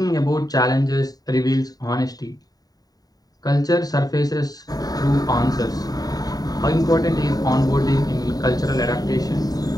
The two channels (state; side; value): late; right; 0.18 ms